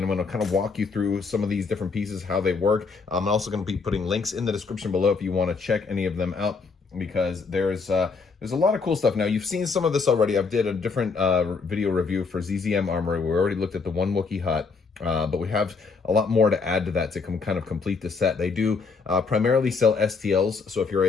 I'm going to kind of walk you through some of these different pieces, how they work. I'm also going to be putting links in the description below if you want to check any of them out, because there's a lot of cool stuff. Now, you've seen some of this already. I've did a different video review for ZZM Armory. We already looked at the one Wookiee hut. But we have a lot more to add to that to kind of complete the set. They do primarily sell STLs. So if you're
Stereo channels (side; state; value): right; quieter; 4.7 dB